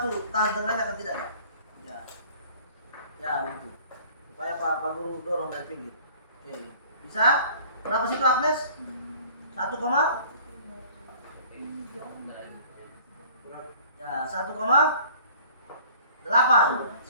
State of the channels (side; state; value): both; inverted; correlation -0.50